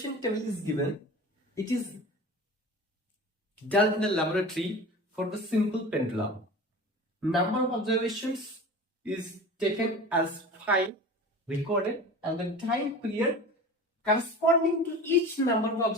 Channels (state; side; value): normal; both; correlation 0.35